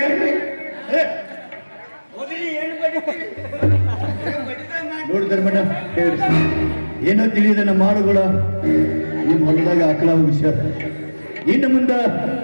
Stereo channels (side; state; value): both; inverted; correlation -1.00